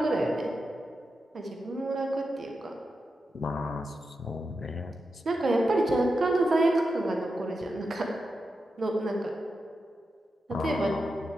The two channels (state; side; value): normal; both; correlation 0.88